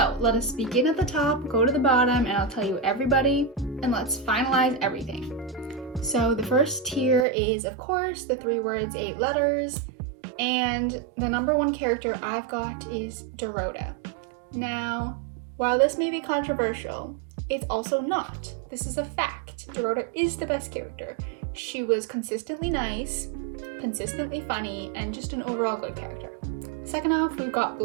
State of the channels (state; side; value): drops out; left; at 7.2 s